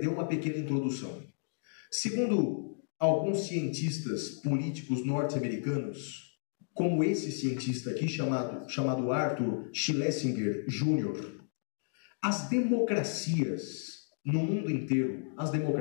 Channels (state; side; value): silent; right; digital silence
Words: uma pequena introdução. Segundo alguns cientistas políticos norte-americanos, como esse cientista aqui, chamado Arthur Schlesinger Jr., as democracias no mundo inteiro, as